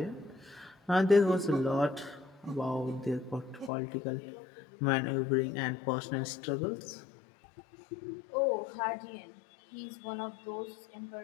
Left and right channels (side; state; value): right; drops out; at 3.7 s